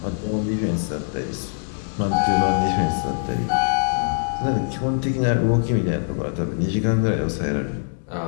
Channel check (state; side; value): silent; right; digital silence